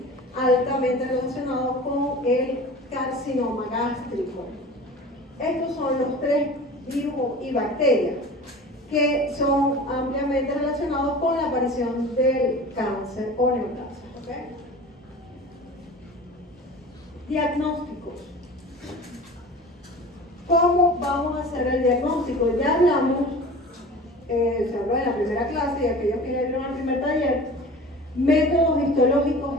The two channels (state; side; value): normal; both; correlation 0.38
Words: altamente relacionado con el carcinoma gástrico. Estos son los tres virus y bacterias que son ampliamente relacionados con la aparición del cáncer o neoplasia. ¿Okay? Diagnósticos. ¿Cómo vamos a hacer el diagnóstico? Ya hablamos, se habló en la primera clase y aquellos que vieron el primer taller, métodos histológicos